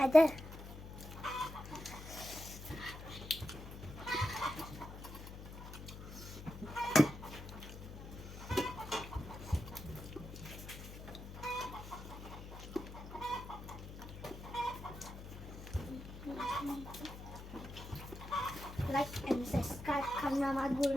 together. Like and subscribe kang na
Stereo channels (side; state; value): left; noise; hum, 11 dB below the sound